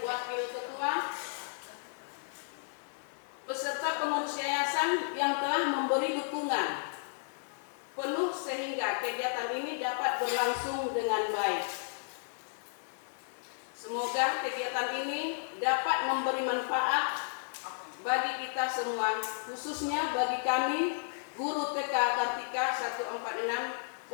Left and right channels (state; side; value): silent; right; digital silence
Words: Wakil Ketua beserta pengurus yayasan yang telah memberi dukungan penuh sehingga kegiatan ini dapat berlangsung dengan baik. Semoga kegiatan ini dapat memberi manfaat bagi kita semua, khususnya bagi kami guru TK Kartika 146